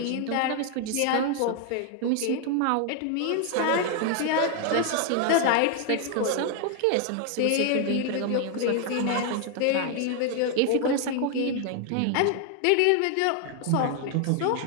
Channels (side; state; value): both; different; correlation 0.00